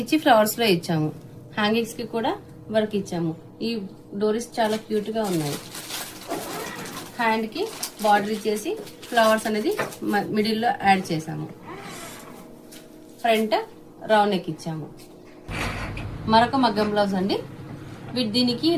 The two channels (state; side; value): identical; both; correlation 1.00